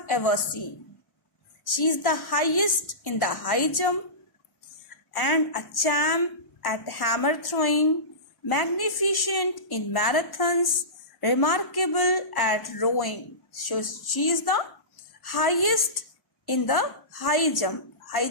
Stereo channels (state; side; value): late; right; 1.1 ms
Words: ever seen. She is the highest in the high jump and a champ at hammer throwing, magnificent in marathons, remarkable at rowing. So she is the highest in the high jump. High